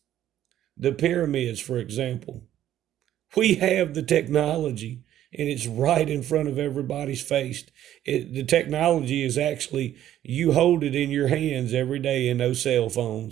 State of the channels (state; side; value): quieter; left; 12.0 dB